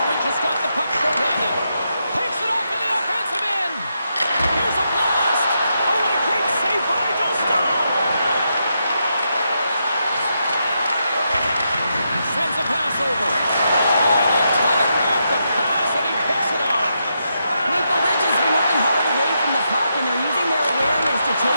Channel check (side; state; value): both; inverted; correlation -0.82